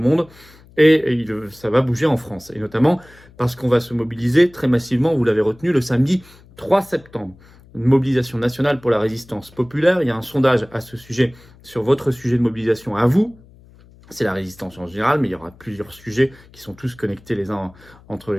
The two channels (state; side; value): noise; left; hum, 25 dB below the sound